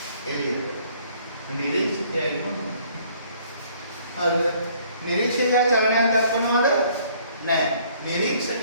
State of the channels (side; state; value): both; inverted; correlation -0.60